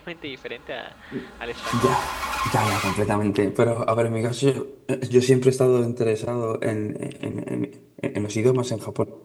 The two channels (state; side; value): identical; both; correlation 1.00